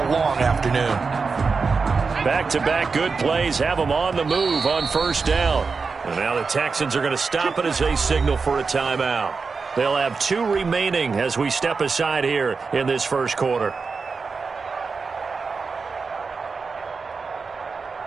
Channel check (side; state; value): left; quieter; 4.8 dB